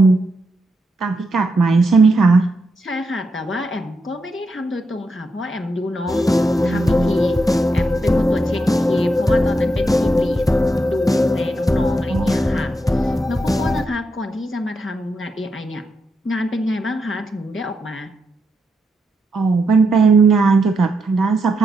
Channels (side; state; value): both; normal; correlation 0.83